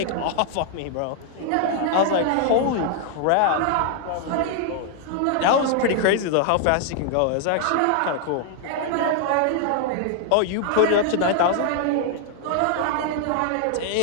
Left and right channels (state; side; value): different; both; correlation 0.00